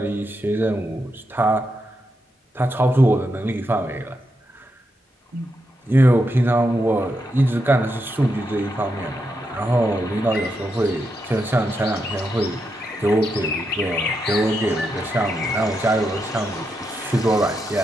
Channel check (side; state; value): both; normal; correlation 0.84